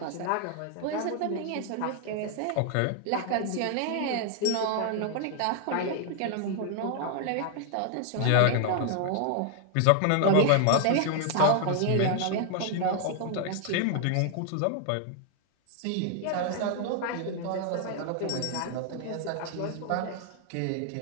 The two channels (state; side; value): different; both; correlation 0.00